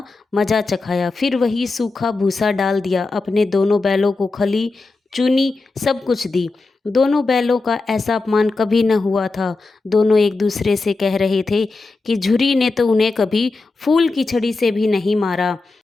मजा चखाया। फिर वही सूखा भूसा डाल दिया। अपने दोनों बैलों को खली, चुनी, सब कुछ दी। दोनों बैलों का ऐसा अपमान कभी न हुआ था। दोनों एक दूसरे से कह रहे थे कि झुरी ने तो उन्हें कभी फूल की छड़ी से भी नहीं मारा।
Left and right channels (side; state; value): right; quieter; 3.6 dB